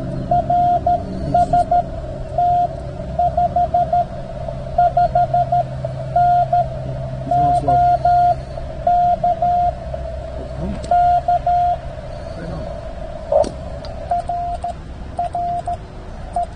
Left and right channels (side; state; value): both; identical; correlation 1.00